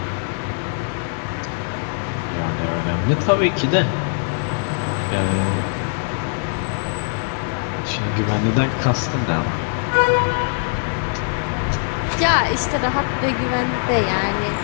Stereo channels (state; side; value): silent; right; digital silence